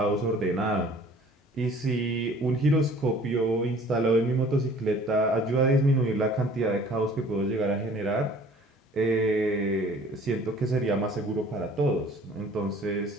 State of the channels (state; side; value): normal; both; correlation 0.51